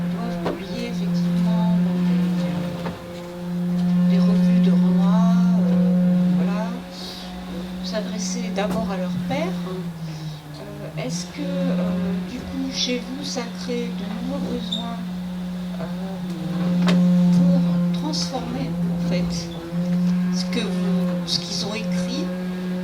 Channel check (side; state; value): both; identical; correlation 1.00